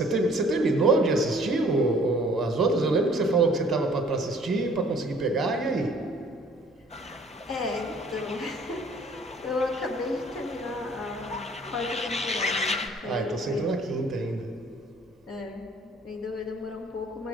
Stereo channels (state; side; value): normal; both; correlation 0.55